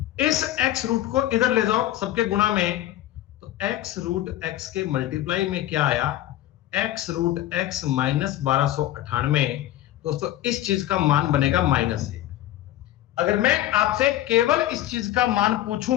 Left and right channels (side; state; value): right; quieter; 13.8 dB